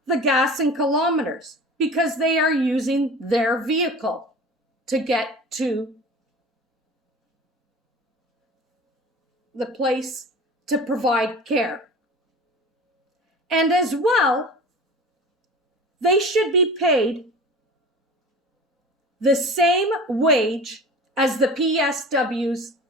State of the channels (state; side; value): normal; both; correlation 0.37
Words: the gas and kilometers, because they are using their vehicle to get to the place to provide care. And as well, they should be paid the same wage as the PSWs